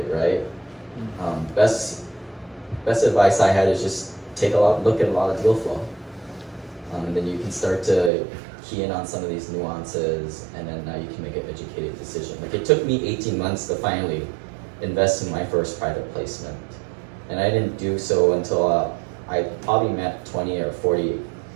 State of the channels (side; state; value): left; drops out; at 8.1 s